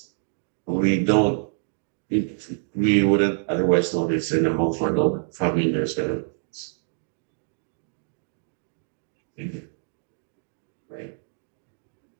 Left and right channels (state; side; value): silent; left; 61 dB below the other